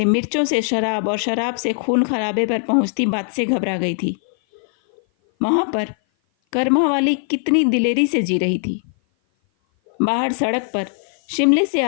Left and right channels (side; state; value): right; silent; 56 dB below the other